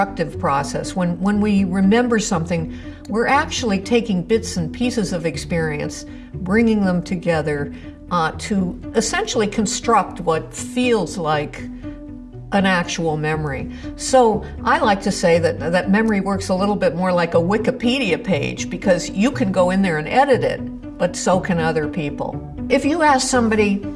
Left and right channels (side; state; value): both; identical; correlation 1.00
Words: process. When we remember something, we're actually taking bits and pieces of experience, bringing them together to essentially construct what feels like an actual memory. So I like to say that memory works a little bit more like a Wikipedia page, because you can go in there and edit it, but so can other people. If you ask somebody,